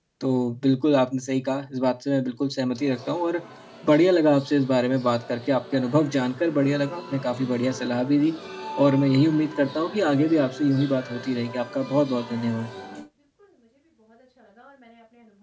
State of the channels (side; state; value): both; identical; correlation 1.00